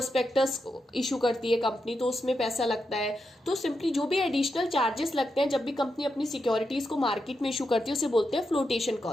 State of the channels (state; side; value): normal; both; correlation 0.86